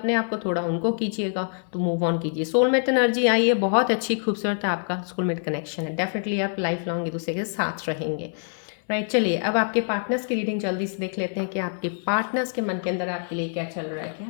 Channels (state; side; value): silent; right; digital silence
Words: आप को, थोड़ा उनको कीजिएगा, तो मूव ऑन कीजिए. सोलमेट एनर्जी आई है, बहुत अच्छी खूबसूरत आपका सोलमेट कनेक्शन है. डेफिनेटली आप लाइफ लॉन्ग एक दूसरे के साथ रहेंगे. राइट, चलिए अब आपके पार्टनर्स की रीडिंग जल्दी से देख लेते हैं कि आपके पार्टनर्स के मन के अंदर आपके लिए क्या चल रहा है,